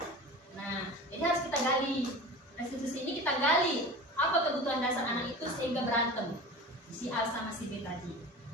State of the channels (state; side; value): normal; both; correlation 0.34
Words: Nah, jadi harus kita gali. Restitusi ini kita gali apa kebutuhan dasar anak itu sehingga berantem si A sama si B tadi.